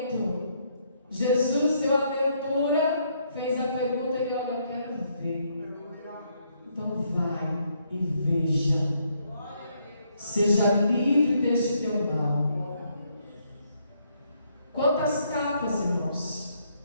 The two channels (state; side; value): inverted; both; correlation -0.73